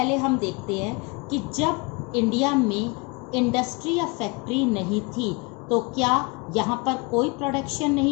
हम देखते हैं कि जब इंडिया में इंडस्ट्री या फैक्ट्री नहीं थी तो क्या यहाँ पर कोई प्रोडक्शन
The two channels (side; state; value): right; quieter; 28.4 dB